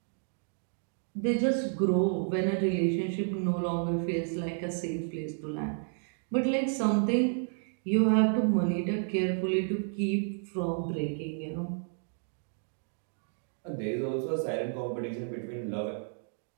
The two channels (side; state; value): left; silent; 57 dB below the other